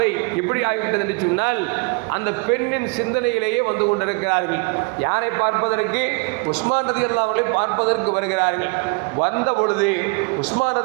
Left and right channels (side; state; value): left; quieter; 31.4 dB